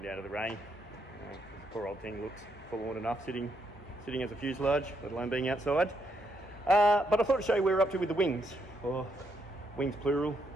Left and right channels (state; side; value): normal; both; correlation 0.77